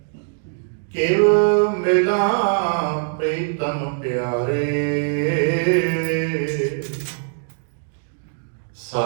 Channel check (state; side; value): silent; left; digital silence